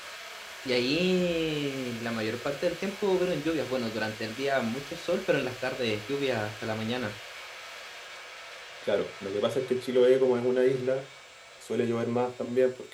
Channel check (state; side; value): identical; both; correlation 1.00